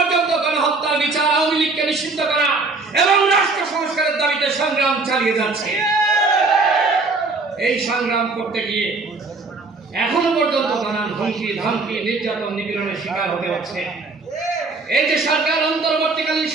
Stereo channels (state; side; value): quieter; left; 3.7 dB